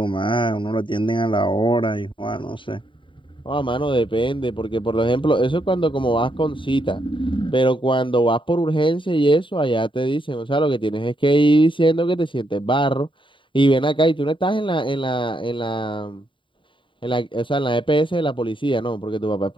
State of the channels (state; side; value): late; right; 0.24 ms